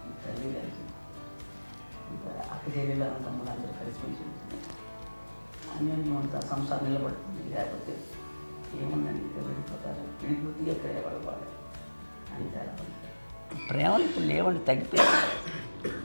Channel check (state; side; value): inverted; both; correlation -1.00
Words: తల్లి కలిసి, ఇంకా అక్క చెల్లెలు తమ్ముడు అందరూ కలిసిమెలిసి ఉంటుంది. అన్నీ అంతా సంసారం నిలబడుతుంది. లేకపోతే ఏముందండి, ఇక్కడ వెళ్ళిపోతారు, విడిపోతే ఎక్కడ ఎవరు బాగా అంతే. ప్రేమలు ఇప్పుడు లేవండి, తగ్గిపోయాయి.